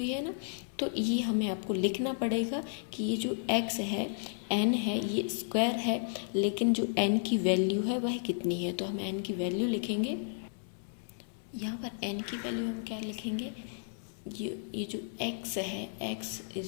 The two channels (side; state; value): right; silent; 56 dB below the other